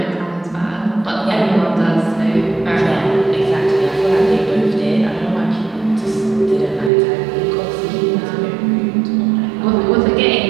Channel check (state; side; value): drops out; left; at 6.9 s